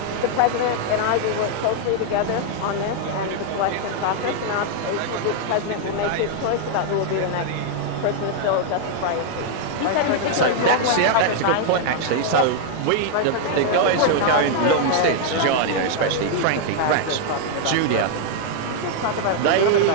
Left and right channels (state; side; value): different; both; correlation -0.01